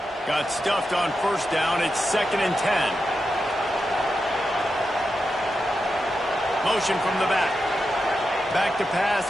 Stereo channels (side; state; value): both; normal; correlation 0.88